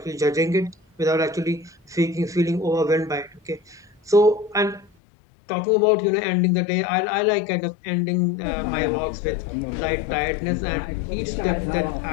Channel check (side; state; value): right; drops out; at 4.9 s